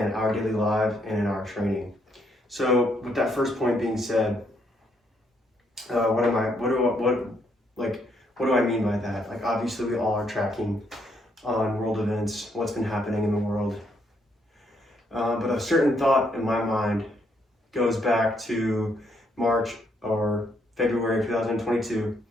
our daily lives and in our training. So with that first point being said, what do I mean by that? Like, obviously we all are tracking on world events, what's been happening in the world. But a certain thought in my mind goes back to March or February of 2022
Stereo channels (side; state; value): both; normal; correlation 0.73